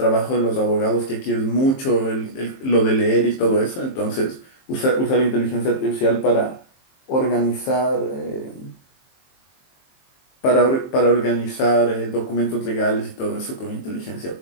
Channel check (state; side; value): late; right; 23 ms